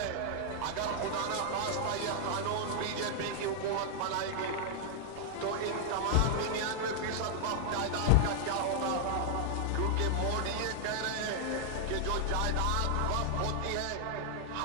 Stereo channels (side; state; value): both; different; correlation 0.00